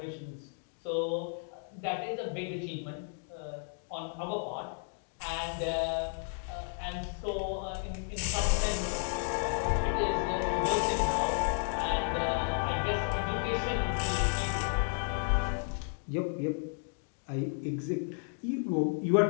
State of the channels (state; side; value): silent; right; 56 dB below the other